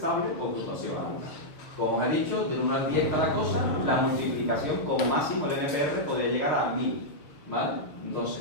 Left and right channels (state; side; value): late; right; 6.6 ms